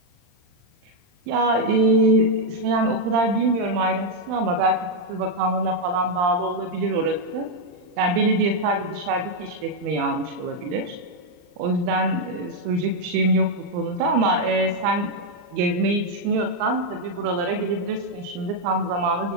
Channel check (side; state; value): left; late; 39 ms